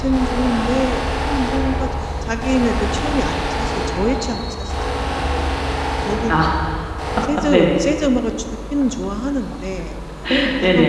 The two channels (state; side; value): identical; both; correlation 1.00